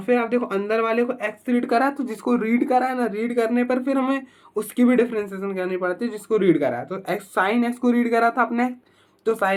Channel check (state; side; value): identical; both; correlation 1.00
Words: फिर आप देखो अंदर वाले को एक्स रीड करा है, तो जिसको रीड करा है ना, रीड करने पर फिर हमें उसकी भी डिफरेंशिएशन करनी पड़ती है जिसको रीड करा है। तो एक्स साइन एक्स को रीड करा था अपने, तो